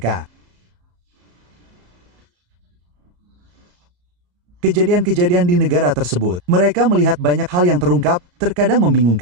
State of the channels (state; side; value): late; left; 34 ms